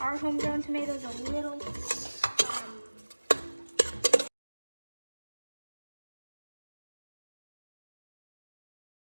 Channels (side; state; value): both; inverted; correlation -1.00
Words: homegrown tomatoes are a little.